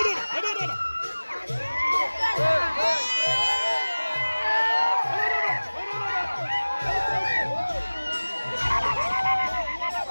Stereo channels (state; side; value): inverted; both; correlation -1.00